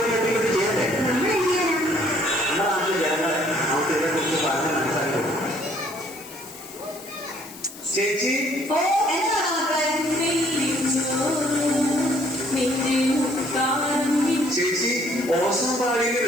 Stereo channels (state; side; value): noise; left; hiss, 17 dB below the sound